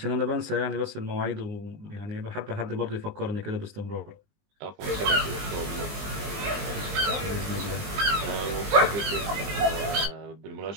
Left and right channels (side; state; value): left; late; 20 ms